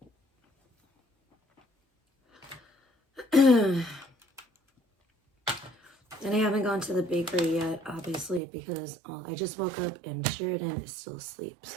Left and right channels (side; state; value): left; drops out; at 8.4 s